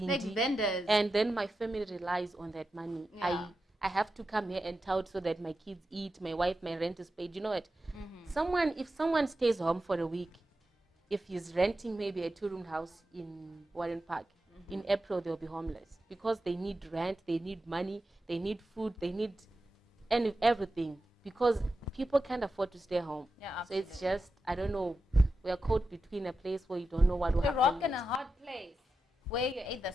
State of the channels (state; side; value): normal; both; correlation 0.90